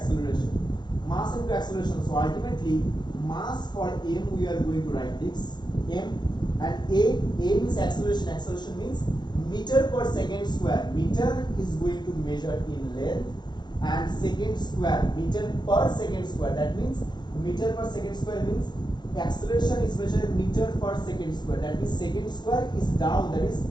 Mass into acceleration. So ultimately, mass for m we are going to write this m, and a means acceleration. Acceleration means meter per second square. Meter is going to measure in length, and second square, meter per second square. That means meter per second square means acceleration is measured meter per second square. That means second square is down, that is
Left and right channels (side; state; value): right; late; 0.21 ms